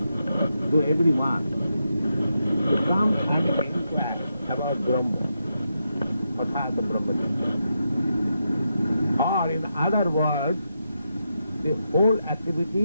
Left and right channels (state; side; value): inverted; both; correlation -0.84